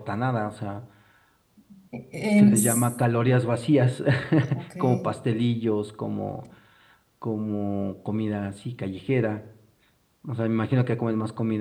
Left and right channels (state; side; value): identical; both; correlation 1.00